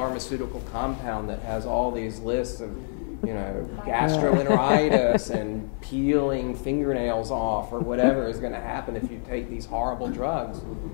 compound that has all these lists of, gastroenteritis and peeling fingernails off or whatever is going to happen if you take these horrible drugs.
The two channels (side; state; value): right; silent; 55 dB below the other